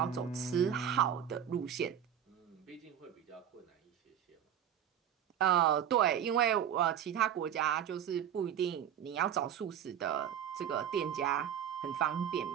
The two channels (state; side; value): quieter; left; 9.5 dB